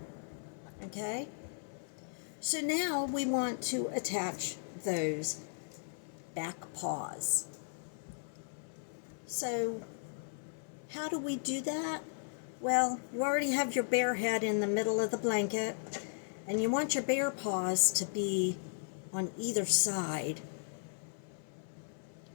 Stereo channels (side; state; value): right; silent; 54 dB below the other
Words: okay? So now we want to attach those back paws. So how do we do that? Well, you already have your bear head in the middle of the blanket, and you want your bear paws to be on either side.